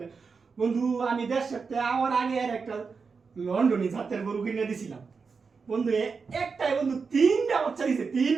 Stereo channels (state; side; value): quieter; left; 5.1 dB